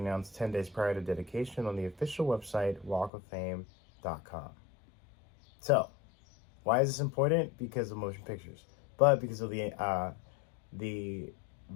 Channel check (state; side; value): drops out; right; at 3.1 s